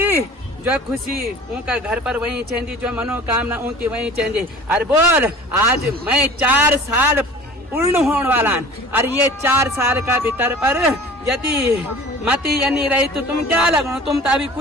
जो खुशी उनका घर पर वही चेंदी, जो मनोकामना उनकी वही चेंदी। अरे बोल, आज मैं 4 साल पूर्ण होने वाला, और ये 4 साल का भीतर पर यदि मति नहीं रही तो तुम क्या लगो, तुम तो अभी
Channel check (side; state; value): both; normal; correlation 0.43